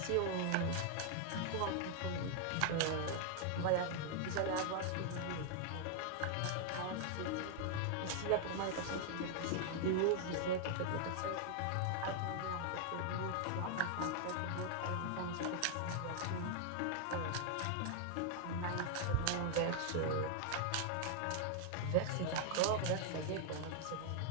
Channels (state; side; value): different; both; correlation 0.00